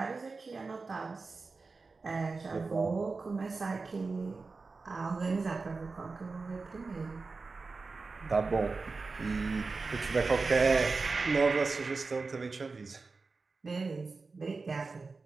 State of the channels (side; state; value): left; quieter; 4.1 dB